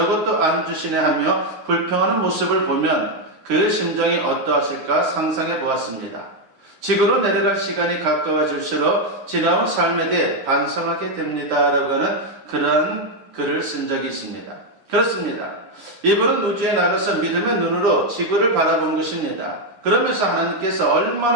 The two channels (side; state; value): left; late; 9.8 ms